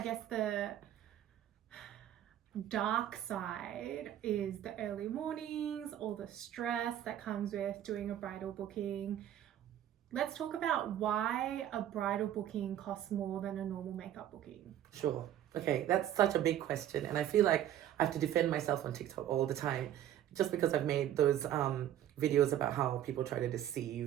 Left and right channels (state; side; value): quieter; left; 11.4 dB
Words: guess the dark side is the early mornings, all the stress that comes with doing a bridal booking. Let's talk about why a bridal booking costs more than a normal makeup booking. Sure. Okay, that's such a big question, and I feel like I have to defend myself on TikTok all the time, just because I've made those videos about how people try to